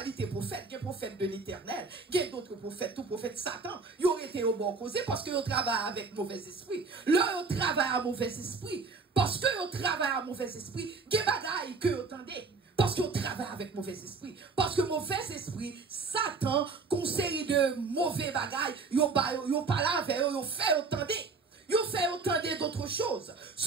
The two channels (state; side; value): quieter; left; 4.4 dB